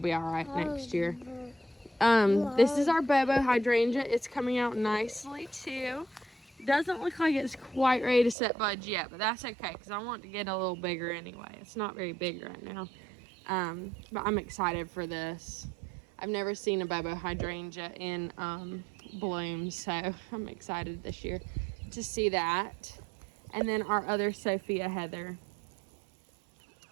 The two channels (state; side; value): drops out; left; at 8.3 s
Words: all right next year. This is our Bobo hydrangea. It's coming out nicely too. Doesn't look like it's quite ready to set buds yet, but that's okay because I want to get a little bigger anyway. It's not very big right now, but I'm excited for this. I've never seen a Bobo hydrangea in bloom, so I'm excited this year to see that. And then our other Sophia Heather.